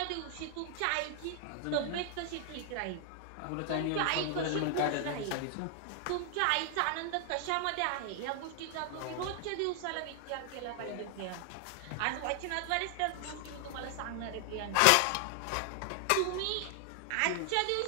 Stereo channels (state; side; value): different; both; correlation 0.00